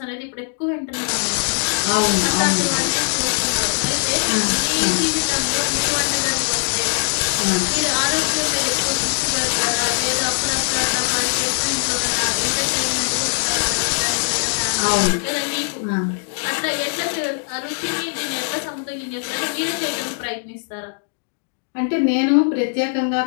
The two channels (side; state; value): right; silent; digital silence